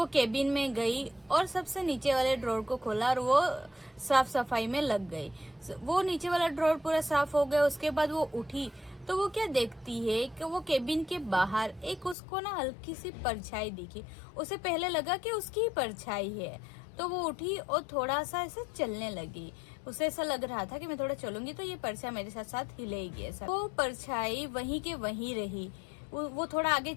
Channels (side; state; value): right; drops out; at 12.2 s